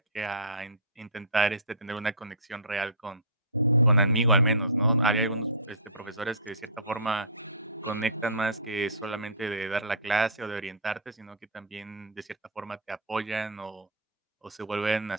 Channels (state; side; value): normal; both; correlation -0.19